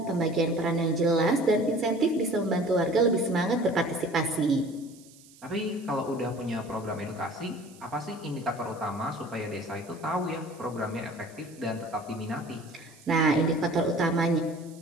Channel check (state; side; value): noise; right; hiss, 24 dB below the sound